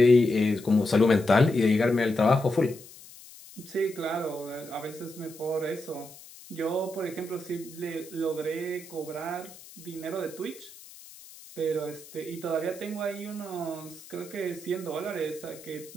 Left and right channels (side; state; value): left; noise; hiss, 19 dB below the sound